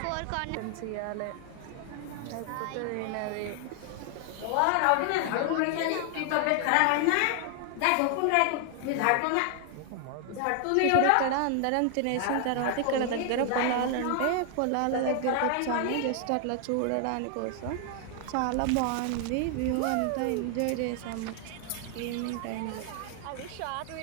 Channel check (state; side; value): different; both; correlation 0.00